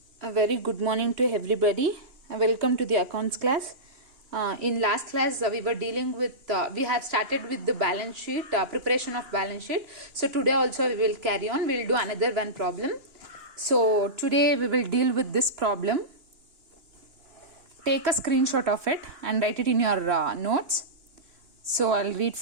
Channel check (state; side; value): late; left; 2.9 ms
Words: A very good morning to everybody. Welcome to the accounts class. In last class, we were dealing with, we have started with the balance sheet, preparation of balance sheet. So today also we will carry on. We will do another one problem. So today we will deal with this problem. Take a screenshot of it and write it in your notes. So I'll read